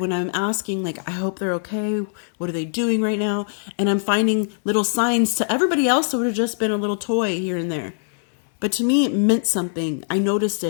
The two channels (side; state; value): right; silent; digital silence